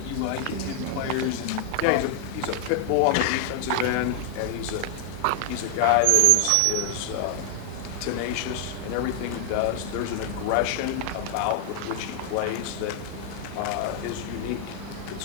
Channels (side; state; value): both; different; correlation 0.00